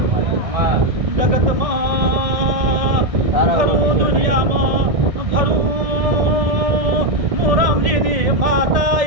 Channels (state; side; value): late; left; 1.6 ms